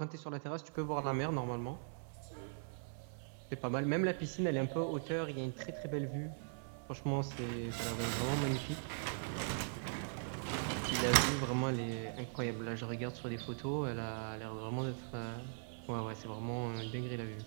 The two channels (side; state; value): left; silent; 51 dB below the other